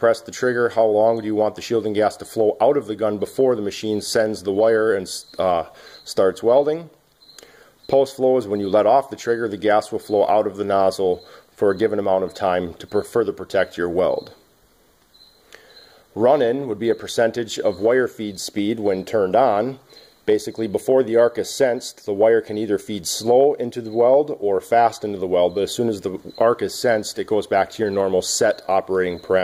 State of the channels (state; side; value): identical; both; correlation 1.00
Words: the trigger, how long do you want the shielding gas to flow out of the gun before the machine sends the wire and starts welding. Post-flow is when you let off the trigger, the gas will flow out of the nozzle for a given amount of time to further protect your weld. Run-in would be a percentage of wire feed speed when turned on. Basically, before the arc is sensed, the wire can either feed slow into the weld or fast into the weld, but as soon as the arc is sensed, it goes back to your normal set operating